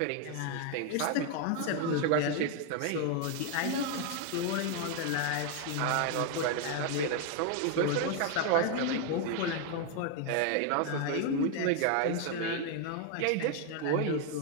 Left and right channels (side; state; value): both; different; correlation 0.01